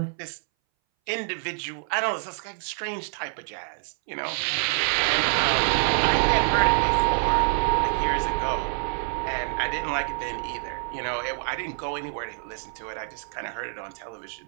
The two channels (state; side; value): silent; left; 60 dB below the other